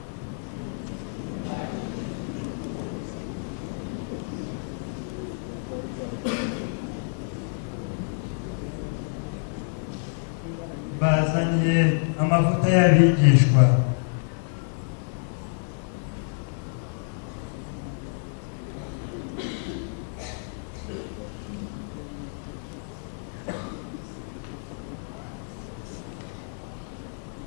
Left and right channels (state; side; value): silent; right; digital silence